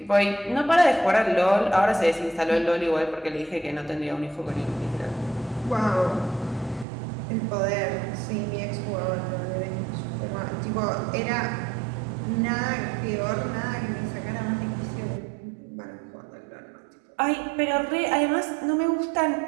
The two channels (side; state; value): left; drops out; at 6.9 s